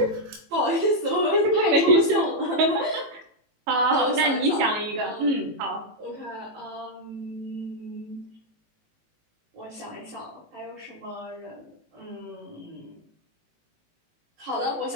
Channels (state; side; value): late; left; 18 ms